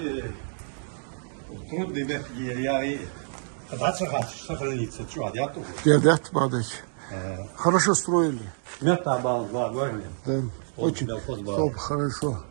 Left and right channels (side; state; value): left; silent; digital silence